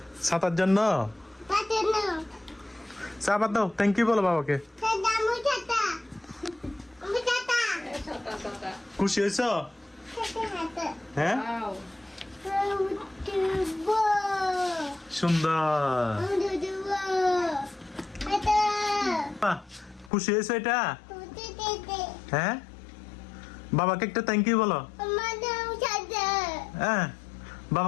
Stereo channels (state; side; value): drops out; right; at 20.1 s